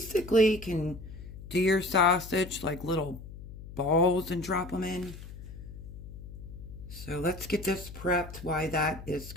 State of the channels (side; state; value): left; noise; hum, 13 dB below the sound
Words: can do your sausage like little balls and drop them in. So let's get this prepped while that is